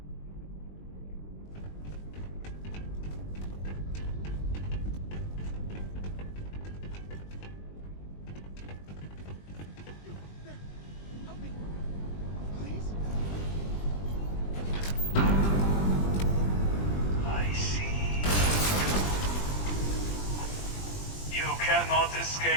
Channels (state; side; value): late; right; 20 ms